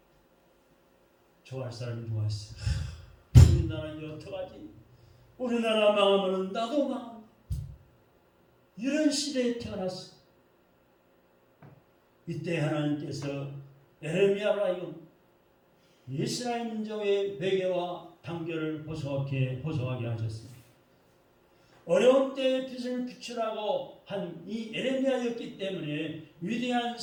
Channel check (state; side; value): identical; both; correlation 1.00